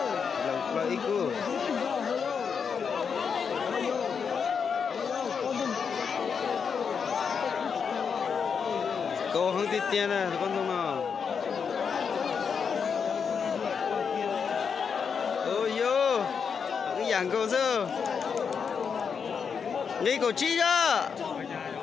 Là ít khu. Cô không tiết tiền nè con sông nào. Ôi yo, cái dạng câu sơ. Nghĩ cổ chi chứ.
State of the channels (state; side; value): quieter; right; 6.4 dB